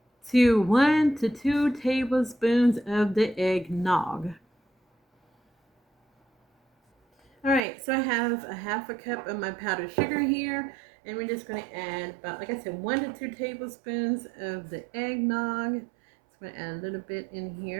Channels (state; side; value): drops out; left; at 7.6 s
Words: to 1 to 2 tablespoons of the eggnog. All right, so I have a half a cup of my powdered sugar here, and we're just going to add about, like I said, 1 to 2 tablespoons of the eggnog. So I'm going to add a little bit in